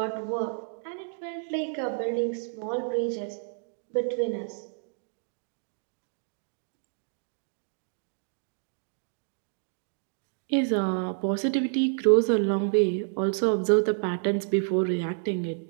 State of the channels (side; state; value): left; silent; digital silence